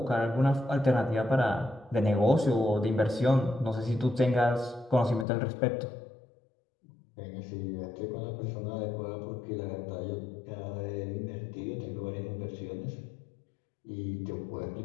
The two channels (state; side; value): drops out; right; at 5.2 s